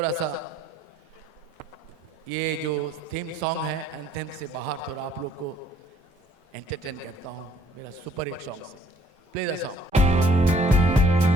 सा ये जो थीम सॉन्ग है एंथेम से बाहर थोड़ा आप लोग को एंटरटेन करता हूँ मेरा सुपर हिट सॉन्ग से play the song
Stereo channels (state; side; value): normal; both; correlation 0.62